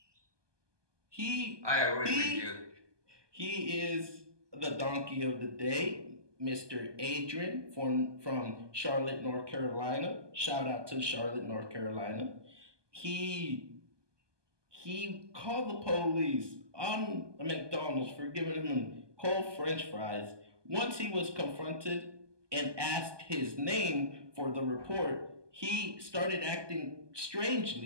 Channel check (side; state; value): left; late; 1.2 ms